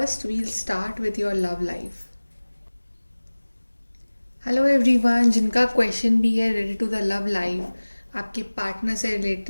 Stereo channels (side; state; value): both; inverted; correlation -1.00